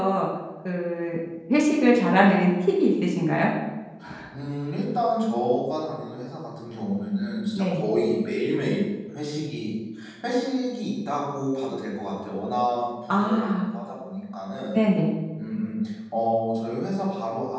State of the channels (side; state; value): both; identical; correlation 1.00